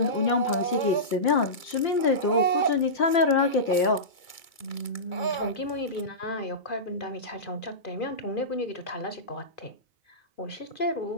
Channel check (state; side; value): late; right; 2.3 ms